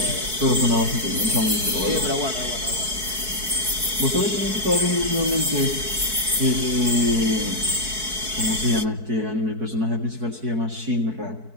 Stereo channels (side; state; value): left; late; 4.6 ms